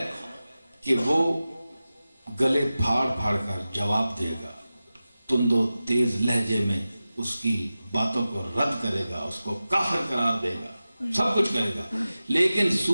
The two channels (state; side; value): inverted; both; correlation -0.95